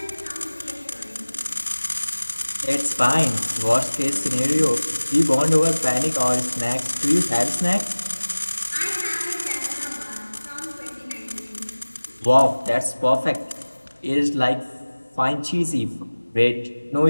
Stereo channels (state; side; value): inverted; both; correlation -1.00